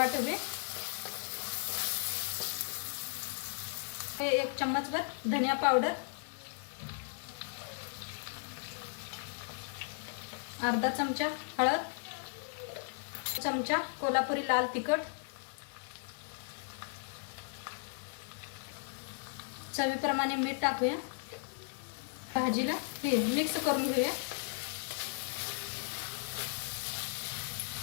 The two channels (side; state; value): right; silent; 54 dB below the other